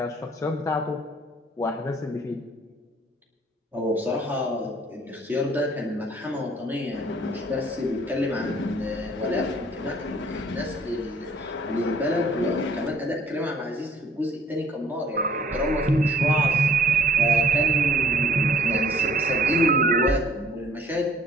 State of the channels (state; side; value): normal; both; correlation 0.57